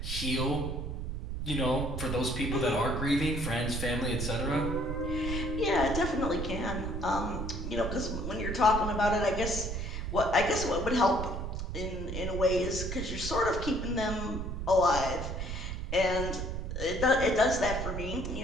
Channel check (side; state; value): right; noise; rumble, 4 dB below the sound